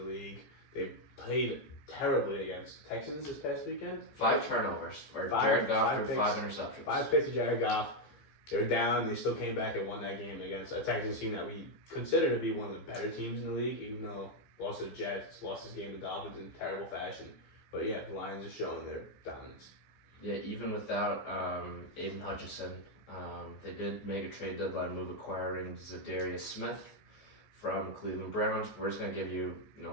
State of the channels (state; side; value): late; right; 15 ms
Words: league. They played terribly against Texans this past weekend. 5 turnovers for Jared Goff threw 5 interceptions. 5 picks to Jared Goff. They were down. They still came back and won that game against a Texans team that we consider to be one of the better teams in the league, even though lost to the Jets, lost this game to Dolphins in terrible fashion. But yeah, the Lions are showing their dominance. Yeah, even without Aiden Hutchinson, they did make a trade deadline move acquiring Zadarius Smith from Cleveland Browns. We're just going to give you,